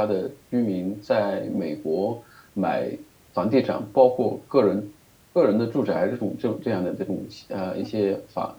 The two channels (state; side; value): identical; both; correlation 1.00